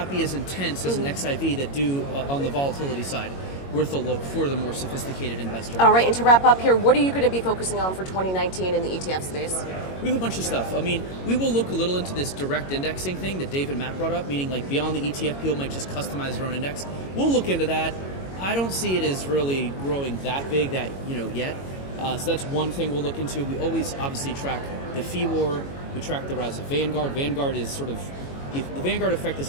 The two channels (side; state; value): right; late; 22 ms